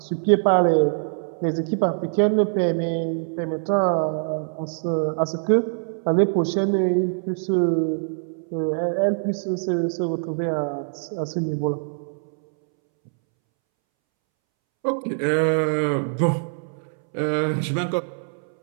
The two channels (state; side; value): silent; left; 63 dB below the other